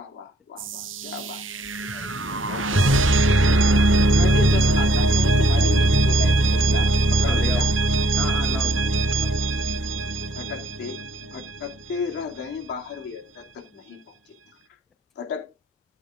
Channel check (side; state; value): both; normal; correlation 0.65